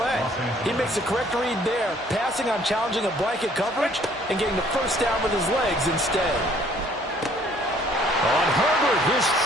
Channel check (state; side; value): normal; both; correlation 0.60